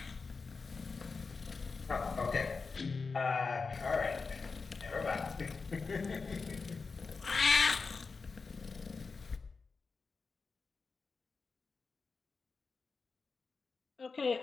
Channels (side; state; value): right; quieter; 4.6 dB